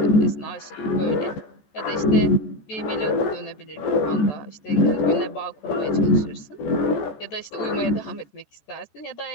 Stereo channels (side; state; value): right; late; 14 ms